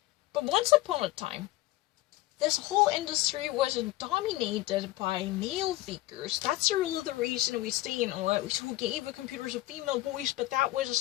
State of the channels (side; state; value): right; quieter; 17.5 dB